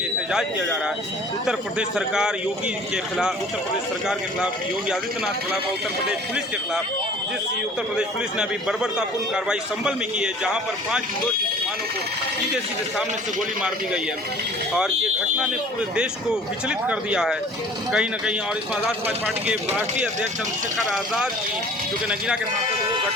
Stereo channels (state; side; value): normal; both; correlation 0.48